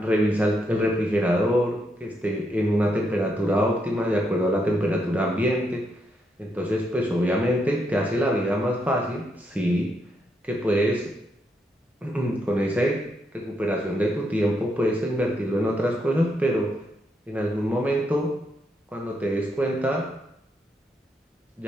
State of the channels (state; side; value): normal; both; correlation 0.79